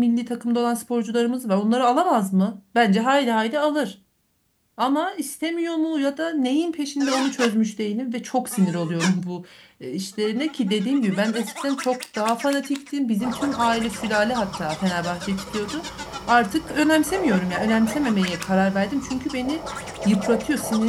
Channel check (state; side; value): identical; both; correlation 1.00